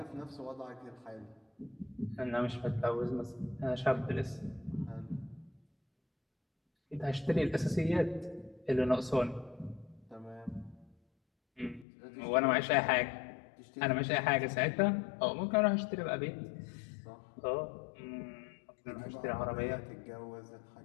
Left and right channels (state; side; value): drops out; right; at 11.9 s